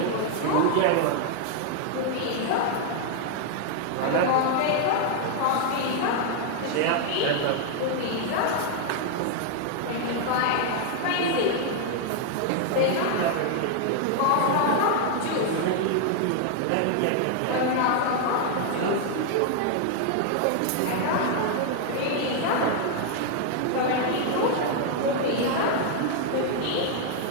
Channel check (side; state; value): both; different; correlation 0.00